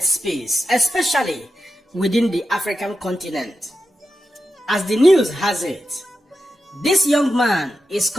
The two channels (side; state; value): both; normal; correlation 0.89